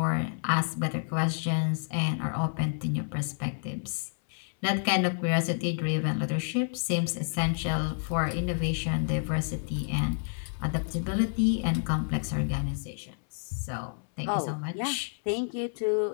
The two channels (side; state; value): right; silent; 58 dB below the other